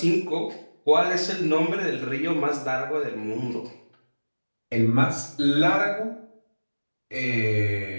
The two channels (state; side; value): inverted; both; correlation -1.00